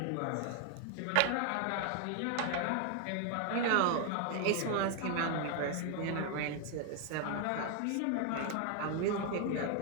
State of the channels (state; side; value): different; both; correlation 0.00